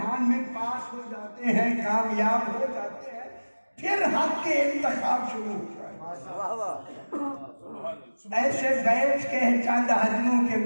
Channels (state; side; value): inverted; both; correlation -1.00